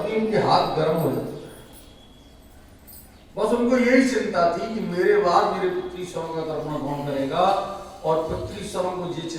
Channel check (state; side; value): identical; both; correlation 1.00